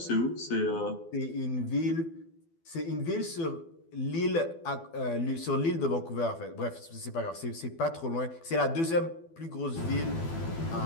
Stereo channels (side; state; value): right; late; 12 ms